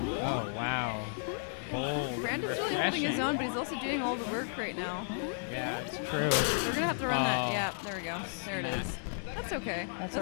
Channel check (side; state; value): right; silent; digital silence